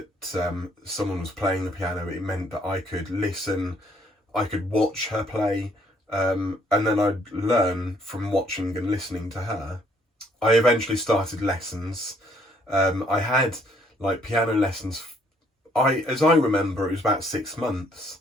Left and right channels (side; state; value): both; normal; correlation 0.65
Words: someone was playing the piano. It meant that I could listen, I could watch her play, and then I'd learn from watching and listening to her. I eventually started lessons. I had like piano lessons. As I remember, it was about 6 months,